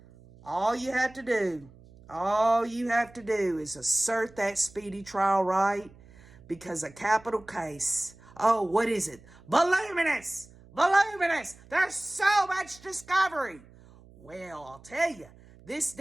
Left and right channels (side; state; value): right; noise; hum, 24 dB below the sound